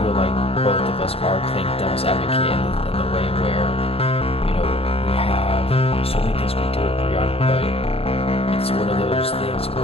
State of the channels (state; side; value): late; right; 0.28 ms